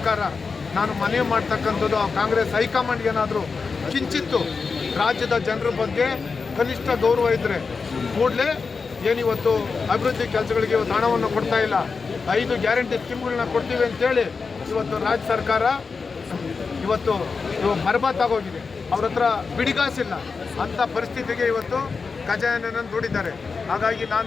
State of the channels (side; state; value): right; quieter; 4.8 dB